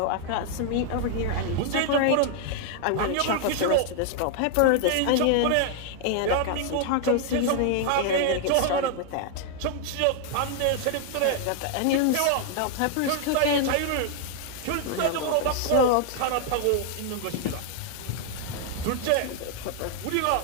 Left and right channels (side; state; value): both; different; correlation 0.00